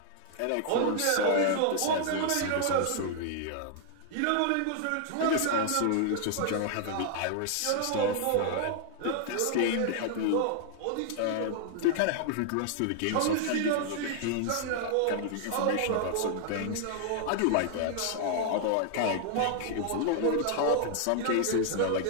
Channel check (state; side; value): different; both; correlation 0.00